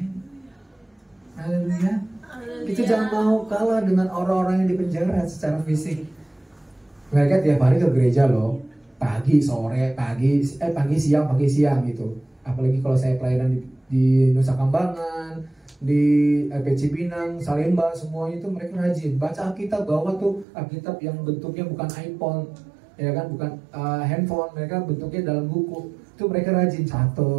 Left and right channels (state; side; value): drops out; left; at 20.5 s